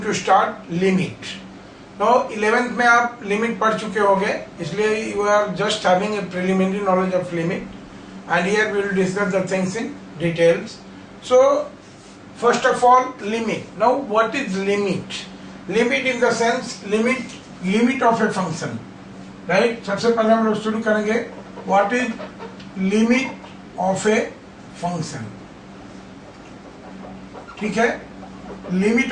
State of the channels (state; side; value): identical; both; correlation 1.00